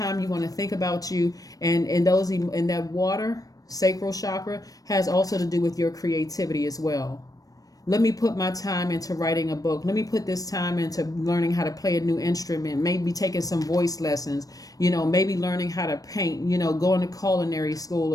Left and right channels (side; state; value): right; late; 0.18 ms